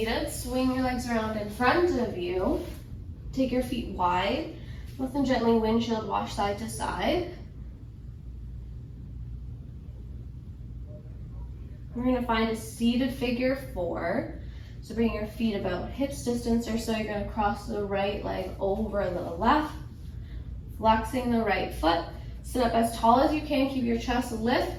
Swing your legs around in front of you. Take your feet wide. Lift them gently, windshield wash side to side. We're going to find a seated figure 4. So bring your feet about hips distance or so. You're going to cross the right leg over the left. Flexing the right foot. Sit up as tall as you can. Keep your chest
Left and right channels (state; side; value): identical; both; correlation 1.00